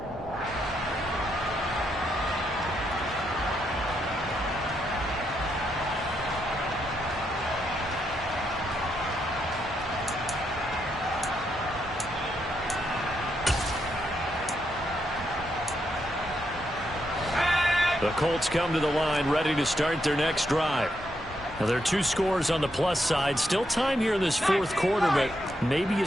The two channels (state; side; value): normal; both; correlation 0.80